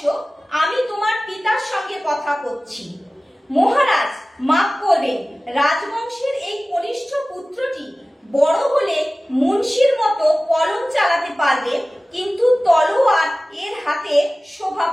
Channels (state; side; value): normal; both; correlation 0.97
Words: আমি তোমার পিতার সঙ্গে কথা করছি। মহারাজ মাফ করবেন, রাজবংশের এই কনিষ্ঠ পুত্রটি বড় হলে মুন্সির মতো কলম চালাতে পারবে, কিন্তু তলোয়ার এর হাতে শোভা